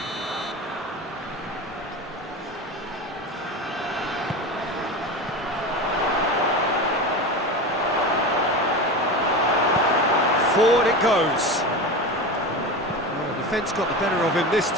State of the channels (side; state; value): both; normal; correlation 0.26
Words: Forward it goes. Well, the defence got the better of him this